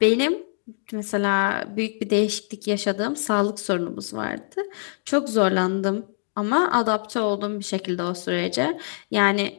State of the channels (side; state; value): right; silent; digital silence